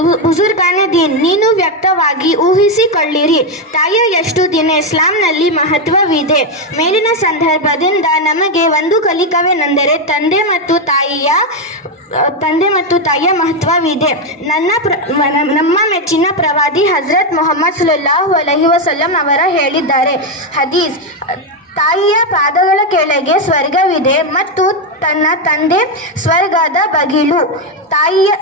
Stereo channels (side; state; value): both; normal; correlation 0.06